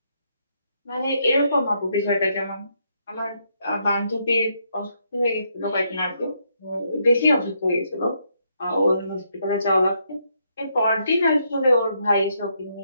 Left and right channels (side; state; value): both; inverted; correlation -0.76